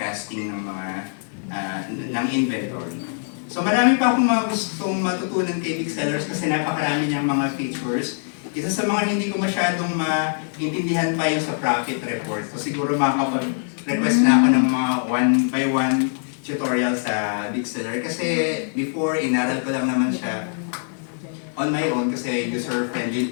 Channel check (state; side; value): silent; right; 63 dB below the other